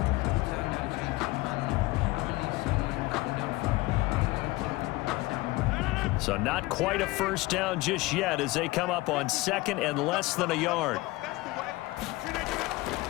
So not quite a 1st down just yet as they come up on 2nd and less than a yard.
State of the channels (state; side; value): quieter; right; 20.4 dB